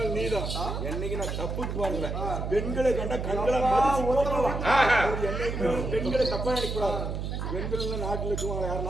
நீதான். என்னைக்கு நான் தப்புக்கு பாருங்க. பெண்களை கண்ட கண்களை மதிச்சு போடலாம். என்னைக்குமே பெண்களை தப்பா நினைக்கூடாது. பெண்கள் நாட்டில் இருக்குவாங்க.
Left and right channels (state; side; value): noise; right; hum, 3 dB below the sound